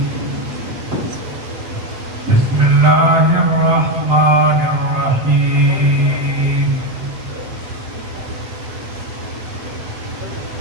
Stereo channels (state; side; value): late; left; 8.1 ms